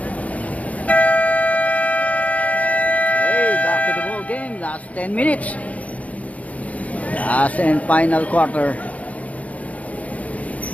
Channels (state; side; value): late; right; 0.069 ms